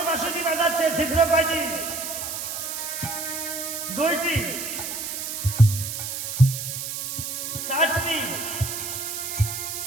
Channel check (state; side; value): noise; right; hiss, 5 dB below the sound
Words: বাঁশিটি বাজাচ্ছে, ছিদ্র কয়টি? 2টি, 4টি,